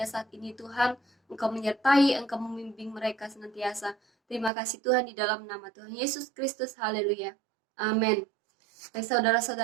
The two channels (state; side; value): drops out; left; at 4.5 s